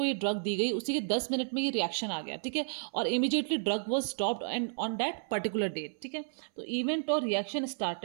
ये ड्रग दी गई उसी के 10 मिनट में ये रिएक्शन आ गया. ठीक है, और immediately drug was stopped and on that particular date. ठीक है, तो इवेंट और reaction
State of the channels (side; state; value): left; silent; 56 dB below the other